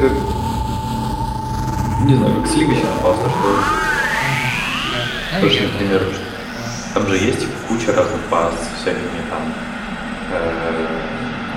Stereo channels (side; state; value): both; identical; correlation 1.00